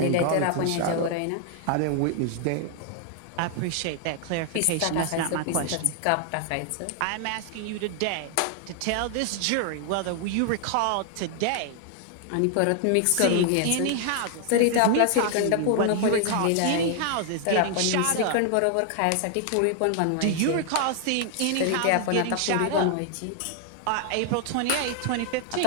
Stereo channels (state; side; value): different; both; correlation 0.00